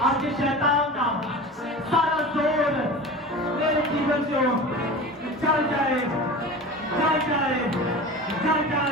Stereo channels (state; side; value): normal; both; correlation 0.33